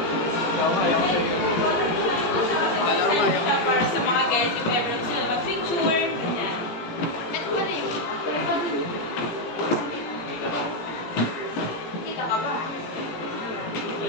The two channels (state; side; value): late; right; 17 ms